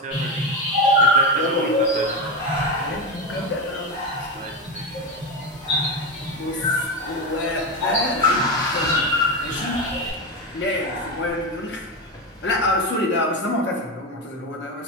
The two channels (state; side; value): normal; both; correlation 0.15